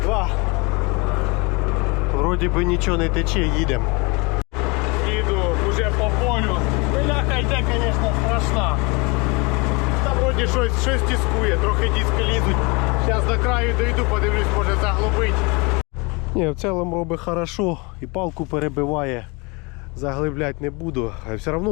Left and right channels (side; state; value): right; quieter; 28.0 dB